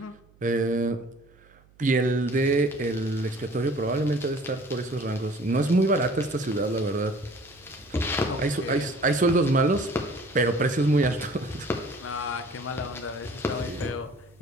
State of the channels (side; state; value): right; noise; hum, 29 dB below the sound